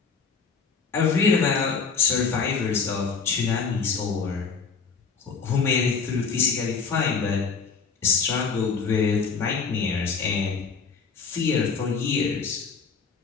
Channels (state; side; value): quieter; right; 5.4 dB